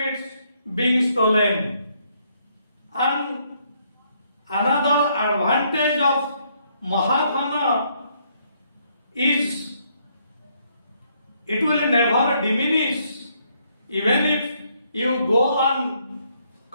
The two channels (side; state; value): both; inverted; correlation -0.71